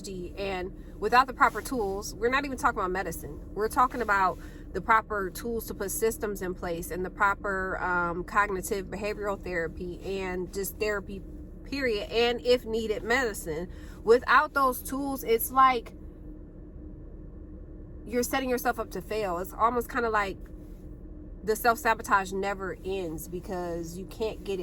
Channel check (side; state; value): both; identical; correlation 1.00